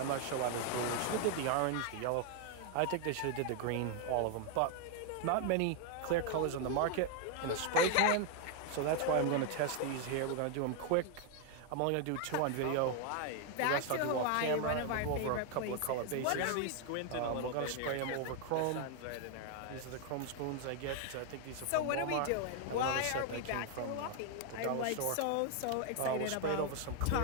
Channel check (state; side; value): different; both; correlation 0.00